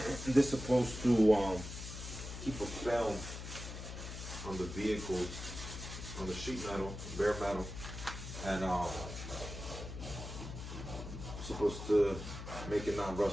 this is supposed to keep a film on the vehicles, on the sheet metal, bare metal, and supposed to make it not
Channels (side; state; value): left; noise; hum, 9 dB below the sound